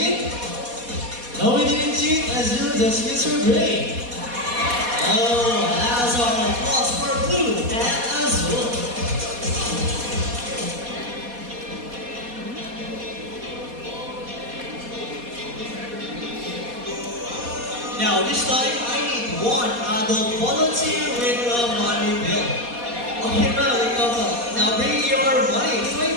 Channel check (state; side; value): late; left; 4.2 ms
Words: No, we didn't cheat. Azul just used her brain. Oh, that's our applause for Blue and Azul. Now, this time I need 1 adult volunteer with a money bill. Okay, now bring your money.